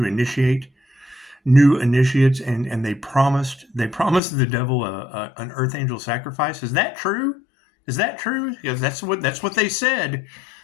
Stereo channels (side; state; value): right; drops out; at 4.2 s